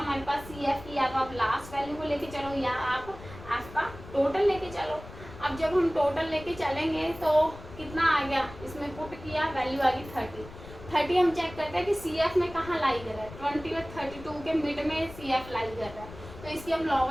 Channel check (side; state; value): left; noise; rumble, 15 dB below the sound